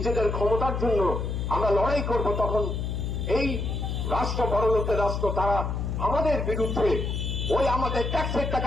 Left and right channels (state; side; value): noise; left; hum, 2 dB below the sound